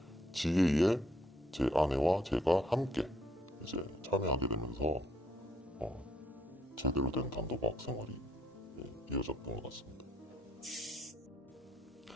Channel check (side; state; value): both; normal; correlation 0.70